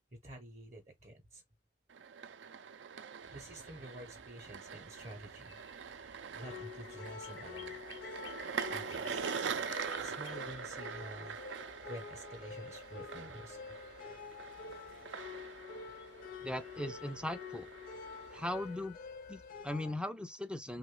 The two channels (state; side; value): normal; both; correlation 0.32